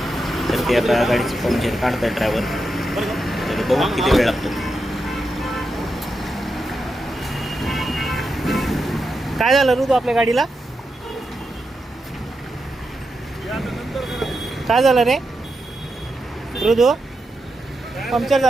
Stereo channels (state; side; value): normal; both; correlation 0.87